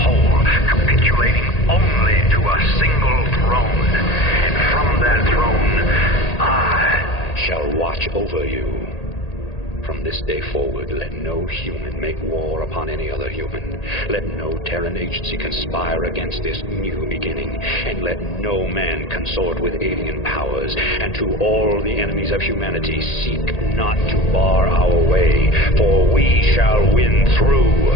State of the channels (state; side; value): late; right; 1.8 ms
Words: whole, capitulating only to a single throne. And from that throne, I shall watch over you. From this day forward, let no human make war upon any other human. Let no Terran agency conspire against this new beginning. And let no man consort with alien powers. And to all the enemies of humanity, seek not to bar our way, for we shall win